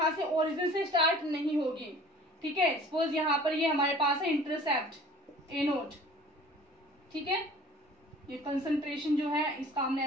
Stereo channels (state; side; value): normal; both; correlation 0.47